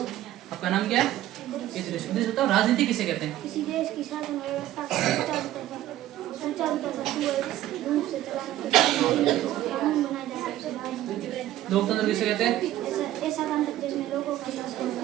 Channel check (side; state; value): left; quieter; 13.8 dB